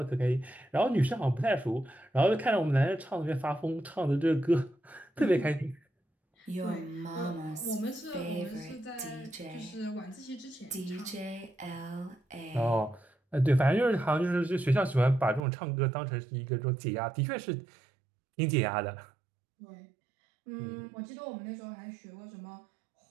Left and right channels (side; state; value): left; drops out; at 15.4 s